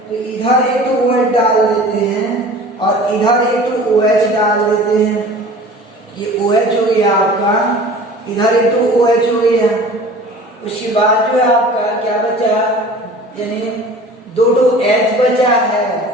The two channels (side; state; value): both; normal; correlation 0.43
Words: तो इधर एक OH डाल देते हैं और इधर एक OH डाल देते हैं, ये OH हो गया आपका, इधर एक OH हो गया। उसके बाद जो है आपका क्या बचा, यानी 2 H बचा है,